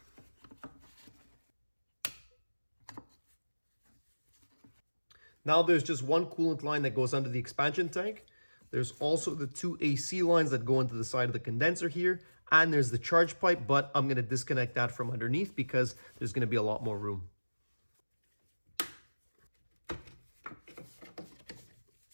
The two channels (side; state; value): both; inverted; correlation -1.00